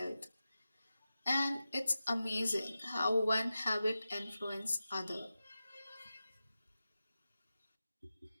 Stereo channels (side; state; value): both; inverted; correlation -0.93